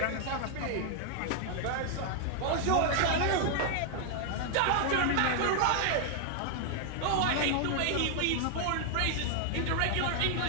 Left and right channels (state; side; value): different; both; correlation 0.00